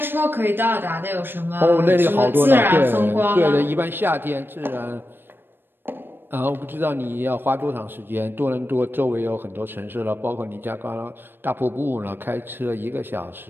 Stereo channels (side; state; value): left; late; 0.098 ms